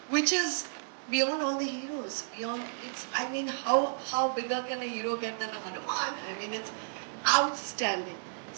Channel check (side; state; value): left; silent; digital silence